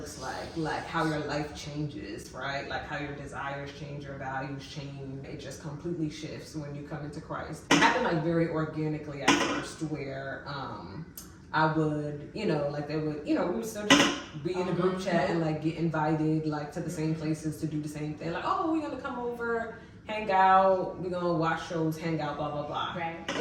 like how your life changes, right? Like how your desires change, your values change. It just completely shifts when you come into Christ. It happened like very organically at first, where I would, you know, like they would, you know, we would still just be in a group chat and like get invited like to the same places to do the same thing. Like, oh, we're gonna come over, hang out, we're gonna watch shows, hang out, blah, blah, blah. Right.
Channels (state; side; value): identical; both; correlation 1.00